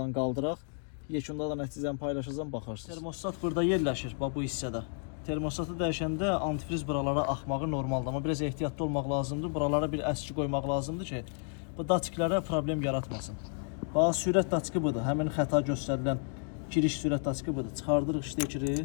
qaldıraq. Yekunda da nəticəni paylaşacağım, baxarsınız. Termostat burada yerləşir, bax bu hissədə. Termostatı dəyişəndə antifriz buralara axmağı normaldır. Amma biraz ehtiyatlı olmaq lazımdır. Buralara bir əski qoymaq lazımdır ki, bu daçklərə problem yaratmasın. Bax, sürət daçkı budur. Həmin xəta göstərilən giriş sürət daçkı budur. Çıxardırıq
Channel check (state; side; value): silent; right; 57 dB below the other